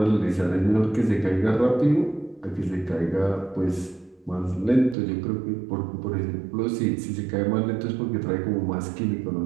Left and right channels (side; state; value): left; drops out; at 5.0 s